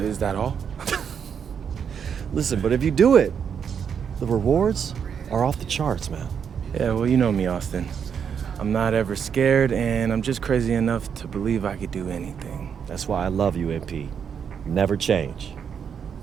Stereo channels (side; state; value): left; quieter; 7.3 dB